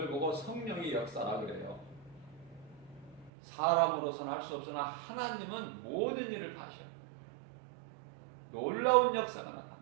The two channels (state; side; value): drops out; left; at 3.3 s